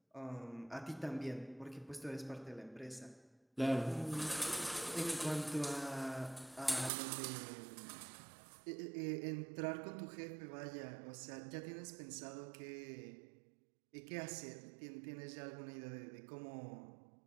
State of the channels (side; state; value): left; drops out; at 6.9 s